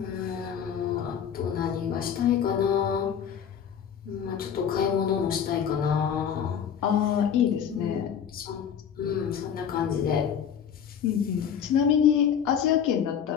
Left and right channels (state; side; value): quieter; right; 8.2 dB